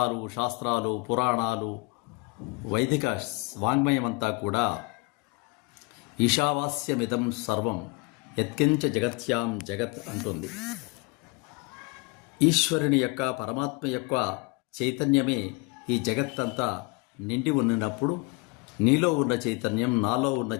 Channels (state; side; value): quieter; right; 27.5 dB